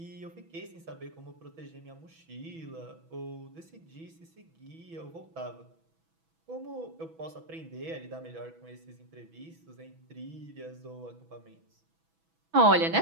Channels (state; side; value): late; left; 6.1 ms